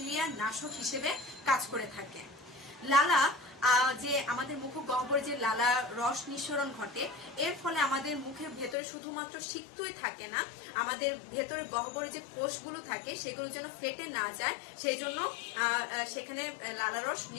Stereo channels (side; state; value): right; drops out; at 8.8 s